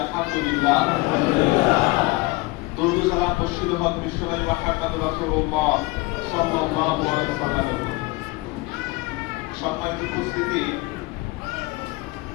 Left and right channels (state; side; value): quieter; right; 22.7 dB